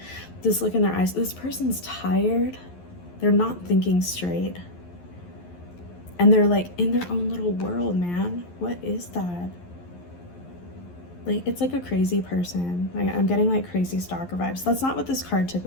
This look in their eyes. This person's tired. They're not thinking straight. And they're like in their own little world, man. What is that? Like, it's like a crazy person. Like, I'm getting like crazy stalker vibes. That's not what this card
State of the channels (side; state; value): right; late; 11 ms